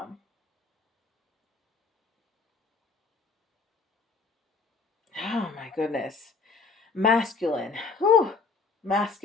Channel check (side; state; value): right; quieter; 4.5 dB